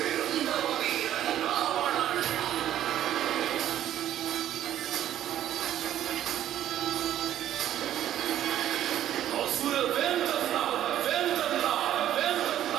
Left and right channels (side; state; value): left; quieter; 11.8 dB